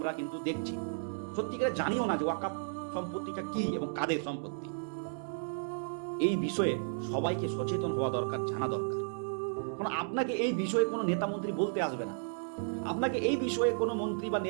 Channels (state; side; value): silent; left; digital silence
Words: কিন্তু দেখছি। সত্যিকারে জানিও না যে ওয়াকফ সম্পত্তিটা কি এবং কাদের সম্পত্তি। এই বিষয়ে সবাইকে সচেতন হওয়া দরকার, জানা দরকার। কারণ আপনাকে এই বিষয়ে কোনো নেতা মন্ত্রী বলতে আসবে না, আপনাকে এই বিষয়ে কোনো মন্ত্রী বা